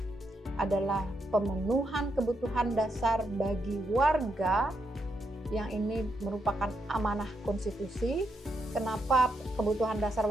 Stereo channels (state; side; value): normal; both; correlation 0.81